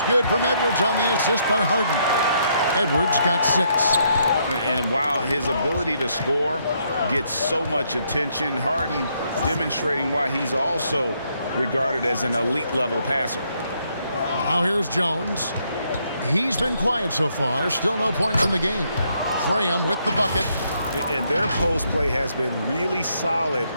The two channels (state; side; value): inverted; both; correlation -0.73